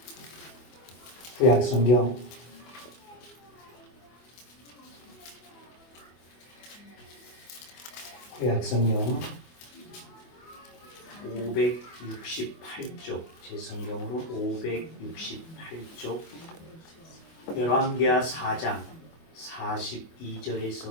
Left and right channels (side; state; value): right; late; 24 ms